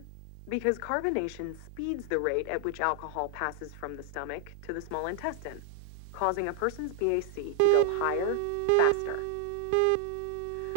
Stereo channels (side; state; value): both; different; correlation 0.00